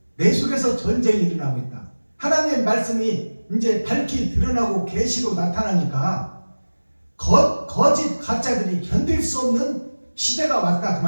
내 속에서 전쟁이 일어나고 있다. 하나님의 말씀이 이제 밝히 드러나고 계시로 나타나니까 거짓 가짜들이 견딜 수 없는 시대가 왔다 그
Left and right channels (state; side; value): inverted; both; correlation -1.00